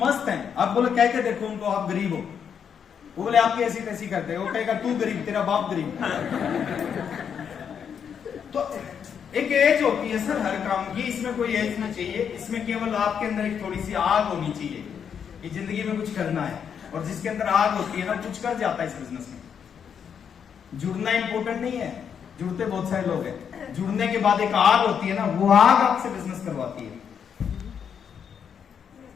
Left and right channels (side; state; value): right; quieter; 7.6 dB